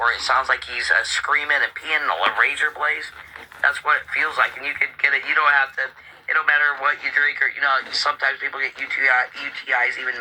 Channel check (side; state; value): both; identical; correlation 1.00